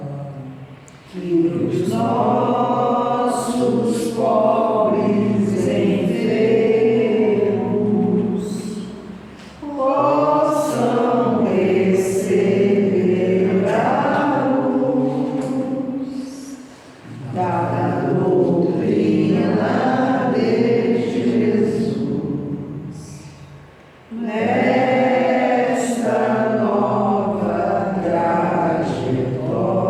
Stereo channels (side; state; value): both; identical; correlation 1.00